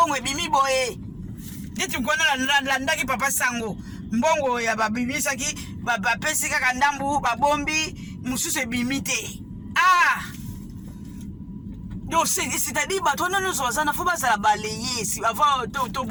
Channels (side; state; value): both; identical; correlation 1.00